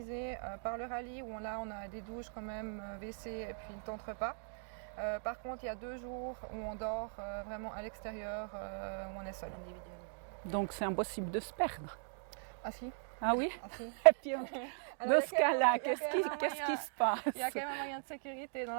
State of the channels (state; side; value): silent; left; digital silence